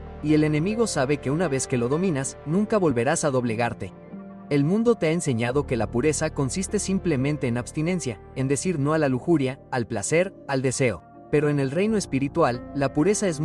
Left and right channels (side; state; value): both; identical; correlation 1.00